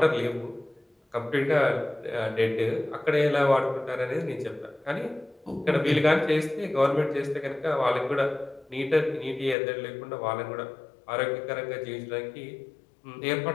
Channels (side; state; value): right; drops out; at 9.6 s